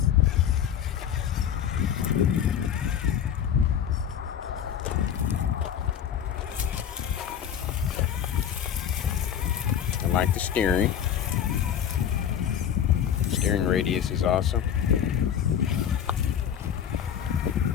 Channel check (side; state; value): right; quieter; 9.1 dB